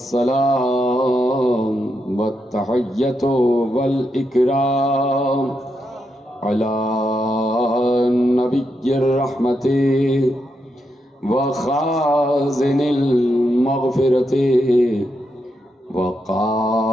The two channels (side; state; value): both; normal; correlation 0.83